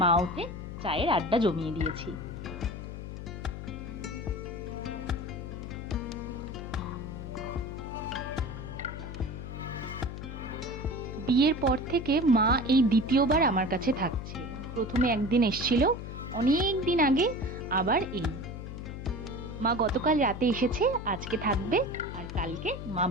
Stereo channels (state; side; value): noise; left; hum, 8 dB below the sound